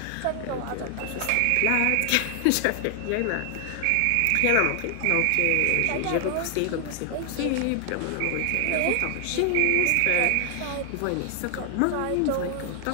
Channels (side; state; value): both; different; correlation 0.00